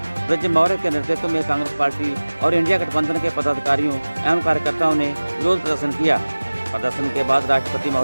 ब्रज मौर्य के नेतृत्व में कांग्रेस पार्टी और इंडिया गठबंधन के पदाधिकारियों एवं कार्यकर्ताओं ने विरोध प्रदर्शन किया। प्रदर्शन के बाद राष्ट्रपति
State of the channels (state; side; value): inverted; both; correlation -1.00